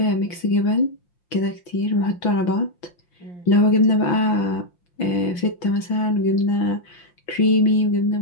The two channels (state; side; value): late; right; 6.0 ms